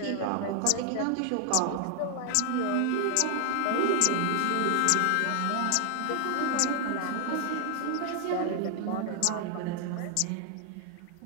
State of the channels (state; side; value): different; both; correlation 0.00